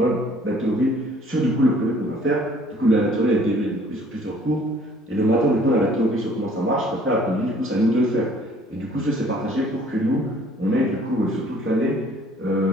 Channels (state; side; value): normal; both; correlation 0.57